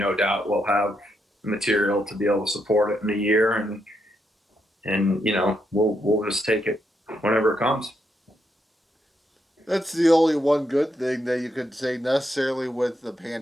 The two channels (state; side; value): normal; both; correlation 0.80